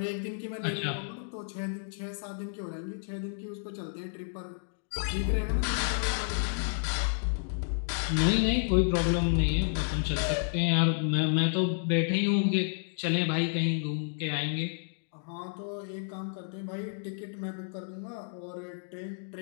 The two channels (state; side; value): silent; right; digital silence